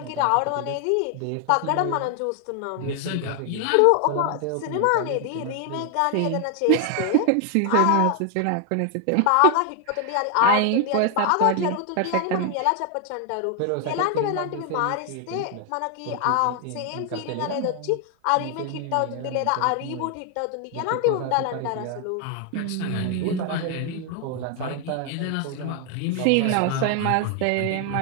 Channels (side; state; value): both; different; correlation 0.00